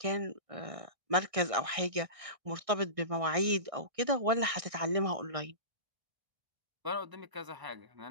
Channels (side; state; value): left; late; 1.6 ms